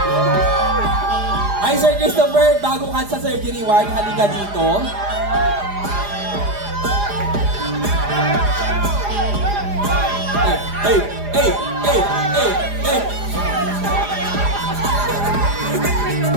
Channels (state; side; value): late; left; 4.9 ms